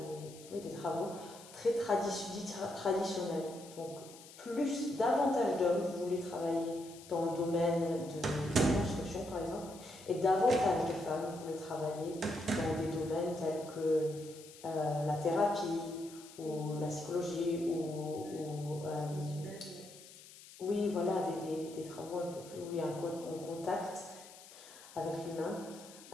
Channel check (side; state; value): left; noise; hiss, 19 dB below the sound